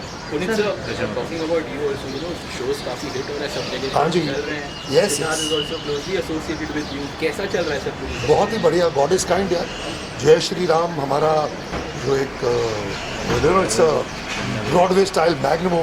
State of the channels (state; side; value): identical; both; correlation 1.00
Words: Puneet sir, talking about you also, shows काफी hit हो रहा है सब जगह. हाँ जी. चल रहे हैं. Yes, Siddharth yes. is also closely associated with you. कैसा चल रहा है सब कुछ? बहुत ही बढ़िया. गॉड इज़ काइंड यार. जय श्री राम हमारा जो एक it's a Broadway style magnum